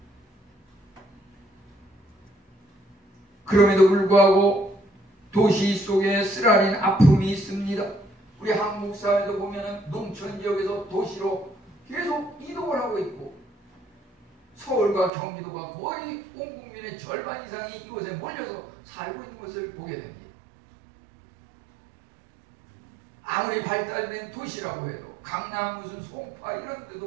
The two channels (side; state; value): left; drops out; at 15.1 s